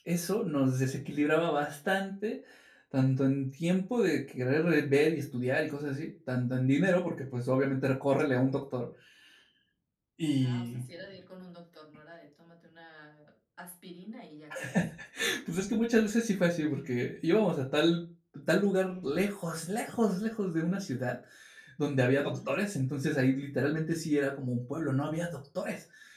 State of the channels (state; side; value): identical; both; correlation 1.00